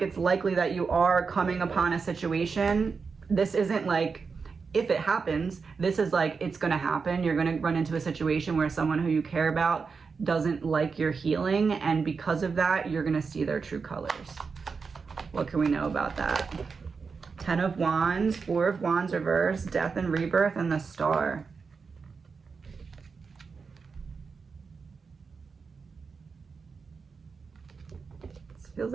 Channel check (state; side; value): quieter; left; 5.1 dB